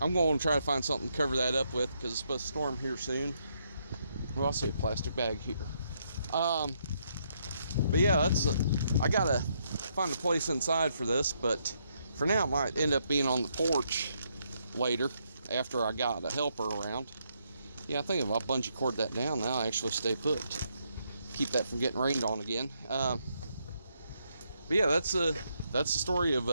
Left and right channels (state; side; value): inverted; both; correlation -0.76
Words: going to try to find something to cover that up with because it's supposed to storm here soon. Well, I see a plastic bag here. But yeah, I gotta find a place inside for this, but for now it might end up being on the porch later after I got a helper around. Yeah, I think if I bungee cord that down now, I actually stay put. Keep that from getting rained on again. But yeah, that's the story of